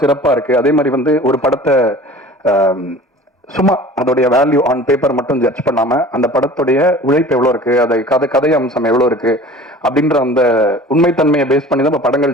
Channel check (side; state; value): both; normal; correlation 0.43